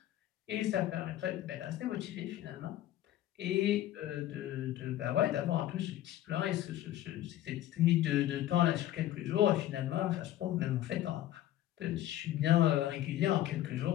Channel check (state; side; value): quieter; right; 13.4 dB